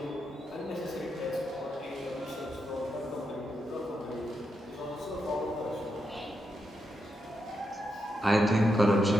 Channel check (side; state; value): both; normal; correlation 0.84